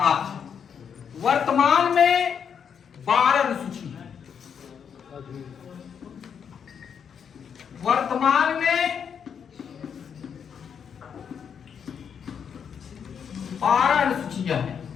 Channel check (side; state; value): right; quieter; 7.4 dB